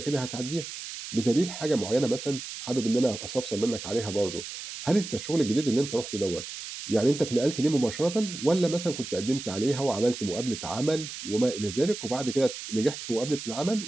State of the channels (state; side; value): noise; right; hiss, 9 dB below the sound